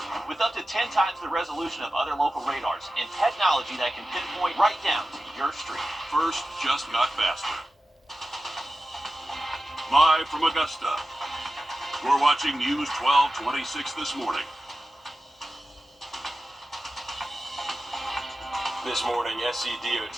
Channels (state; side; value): normal; both; correlation 0.93